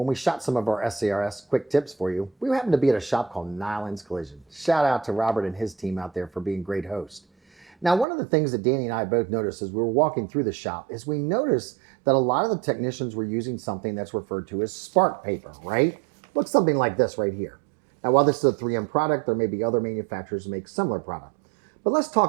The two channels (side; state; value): left; drops out; at 8.1 s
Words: we shot some of our SCRS quick tips for you, we happened to be at a shop called Nyland's Collision. Shout out to Robert and his team out there for being great hosts. Now, one of the things that Danny and I both noticed as we were walking through the shop is we noticed that a lot of the technicians were using something that's referred to as spark paper, right? Looks something like this right here. Now, while this is a 3M product, there may be other manufacturers who make similar product. But let's